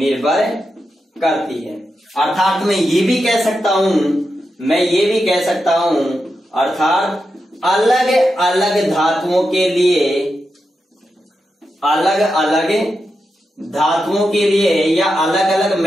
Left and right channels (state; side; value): normal; both; correlation 0.88